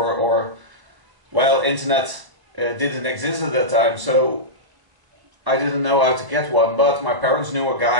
or, well, internet didn't exist at that time, so I didn't know how to get one. But my parents knew a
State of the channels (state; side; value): late; left; 1.0 ms